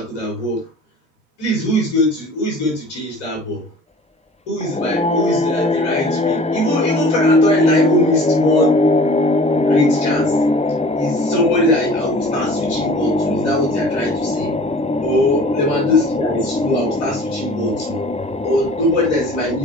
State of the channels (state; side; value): normal; both; correlation 0.46